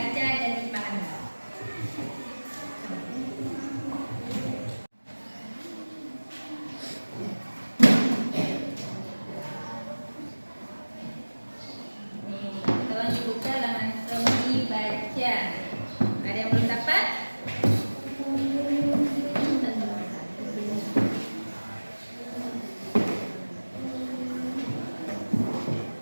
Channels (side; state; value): both; inverted; correlation -1.00